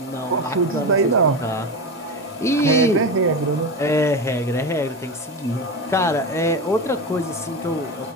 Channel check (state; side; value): normal; both; correlation 0.21